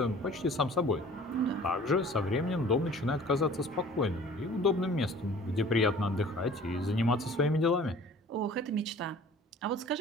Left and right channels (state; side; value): normal; both; correlation 0.48